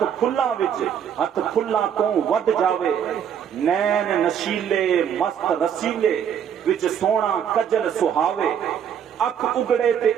کھلاں وچ ہاتھ کھلاں تو ود جاوے, نین نشیلے مست رسیلے وچ سونا کجل سہاوے, اکھ اگڑے تے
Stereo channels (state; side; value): quieter; left; 8.6 dB